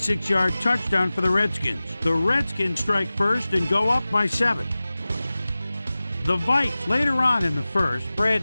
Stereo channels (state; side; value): inverted; both; correlation -0.97